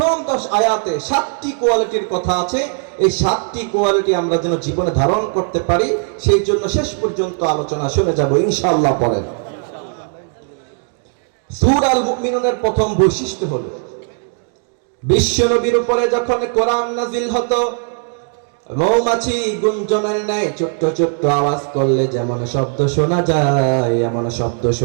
10 আয়াতে 7টি কোয়ালিটির কথা আছে। এই 7টি কোয়ালিটি আমরা যেন জীবনে ধারণ করতে পারি, সেই জন্য শেষ পর্যন্ত আলোচনা শুনে যাব ইনশাআল্লাহ। পড়েন। সূরা আল মুমিনুনের প্রথম বৈশিষ্ট্য হলো বিশ্বনবীর উপরে যখন কোরআন নাজিল হতো, মৌমাছি গুঞ্জনের ন্যায় ছোট্ট ছোট্ট আওয়াজ করলে যেমন শব্দ শোনা যায়, এমন শব্দ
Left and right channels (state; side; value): silent; left; 56 dB below the other